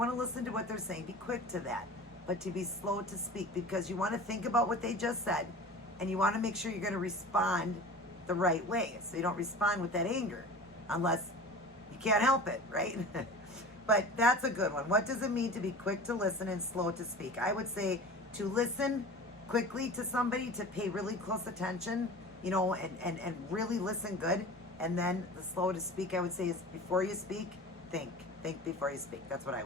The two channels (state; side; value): normal; both; correlation 0.37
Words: to listen to what they're saying. Be quick to that. But to be slow to speak because you want to think about what they just said and you want to make sure you're going to respond the right way. So you don't respond with that anger unless you can't help it, right? But that's a good one. What does it mean to be quick to listen and slow to speak? I would say to listen quickly to somebody, to pay really close attention, you know, and really listen good. And then the slow to speak, I would say, is before you speak, think. Think before you speak. That's what I